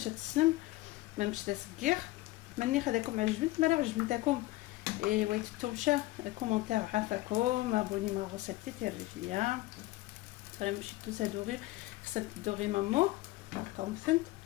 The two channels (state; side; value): quieter; right; 18.6 dB